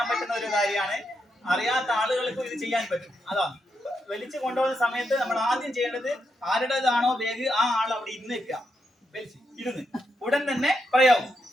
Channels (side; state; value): both; normal; correlation 0.83